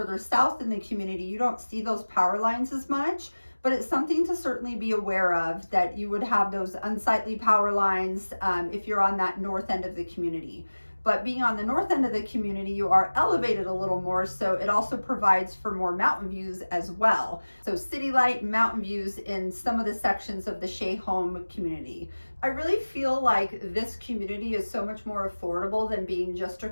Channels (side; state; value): both; inverted; correlation -1.00